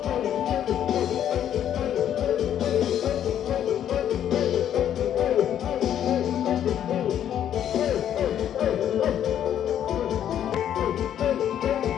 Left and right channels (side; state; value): right; quieter; 10.2 dB